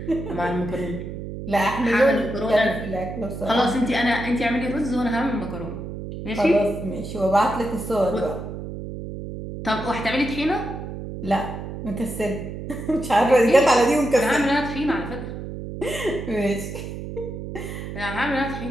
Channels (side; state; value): right; noise; hum, 8 dB below the sound